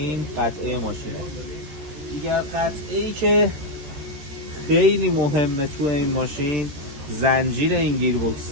قطعه ماشینه. دیگر قطعه‌ای که خیلی مهمه تو این ماشین زنجیر این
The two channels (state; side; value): late; left; 14 ms